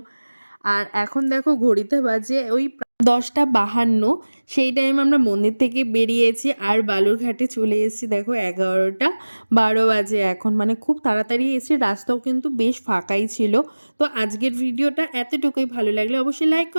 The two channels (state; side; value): inverted; both; correlation -1.00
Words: আর এখন দেখো ঘড়িতে বাজে ওই 10টা 52, সেই টাইম আমরা মন্দির থেকে বেরিয়েছি আর বালুরঘাটে চলে এসেছি দেখো 11টা 12 বাজে এখন, মানে খুব তাড়াতাড়ি এসে, রাস্তাও কিন্তু বেশ ফাঁকাই ছিল। তো আজকের ভিডিওটা এতটুকুই, ভালো লাগলে অবশ্যই লাইক